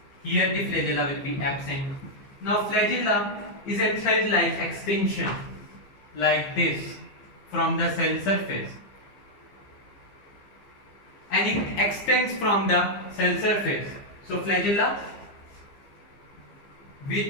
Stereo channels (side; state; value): right; late; 15 ms